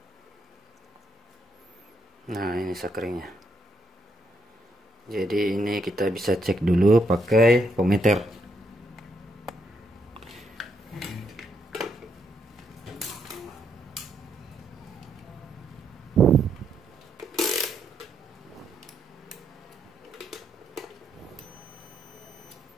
Nah, ini sakringnya. Jadi ini kita bisa cek dulu pakai pometer.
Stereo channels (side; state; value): both; normal; correlation 0.77